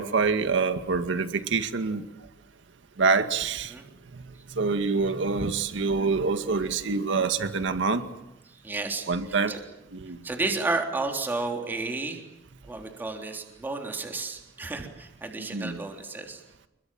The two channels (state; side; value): quieter; left; 3.9 dB